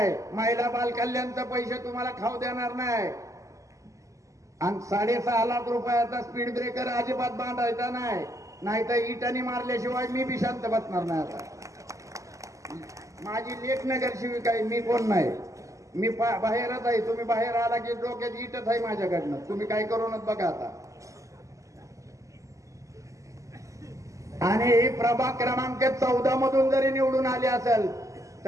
महिला बाल कल्याणचे पैसे तुम्हाला खाऊ देणार नाही. आणि 6.5 लाख रुपयाचा स्पीड ब्रेकर अजिबात बांधायचा नाही, नाहीतर इटाने मारल्याशिवाय मी बी शांत बसणार नाही. आता माझी लेख नगर शिविका आहे, मी कोण नाही, मी बाहेरच आहे. तुम्ही बाहेर आला की डोक्यात इटच आहे माझ्याकडनं, तुम्ही काय करूनच बघा आता. आणि प्रभाग क्रमांक 14 मधून जरी निवडून आले असेल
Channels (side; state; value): left; late; 0.16 ms